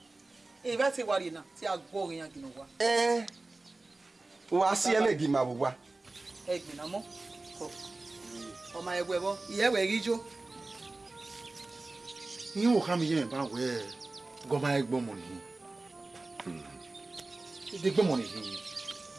E ba ti wari na ti agbo yan gino wa. Wa si elegi ma wa. Egbe na mo. O ma egbe bo, iye we rijo. Yín wò ká mi yẹn bá wẹ̀ gọ́mà ẹgbọ́n mọ̀ nìyí. Ìdí gbọ́n mọ̀ nìyí.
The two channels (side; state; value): left; quieter; 3.2 dB